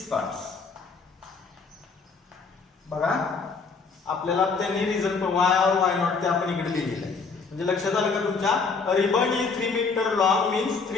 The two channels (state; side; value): quieter; right; 4.8 dB